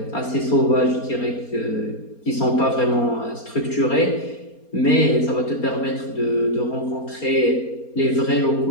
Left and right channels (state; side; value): late; right; 4.3 ms